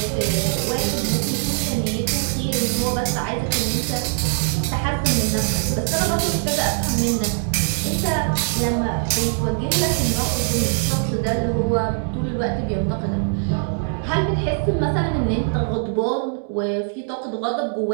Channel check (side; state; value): left; silent; 62 dB below the other